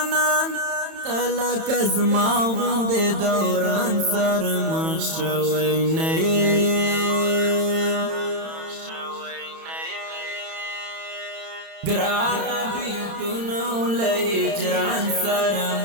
تلک از ما غند دوران سر مخشوی نئی گران بیلتونو لهجران سر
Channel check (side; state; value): left; late; 31 ms